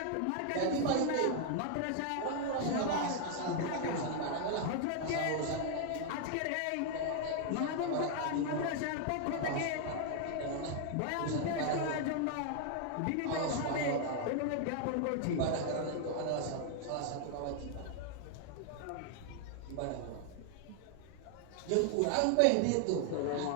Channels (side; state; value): both; different; correlation 0.00